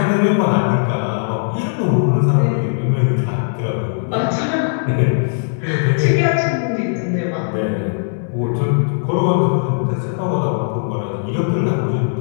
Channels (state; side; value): silent; right; 62 dB below the other